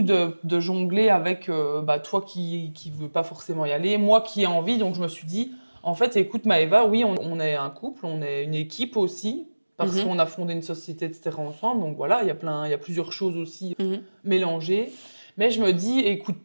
de jongler avec toi qui veut pas forcément y aller, moi qui ai envie, donc je me suis dit en fait, écoute Maëva, oui, on est un couple, on est une équipe aussi, parce Mhm. qu'on a fondé une société, etc. ensemble. Donc voilà, il y a plusieurs choses aussi Mhm. mélangées. Mais je me dis,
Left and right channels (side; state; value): both; inverted; correlation -1.00